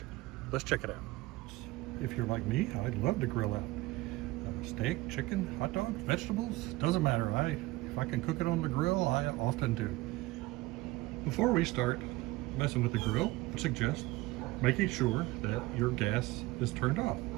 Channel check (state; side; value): quieter; left; 19.7 dB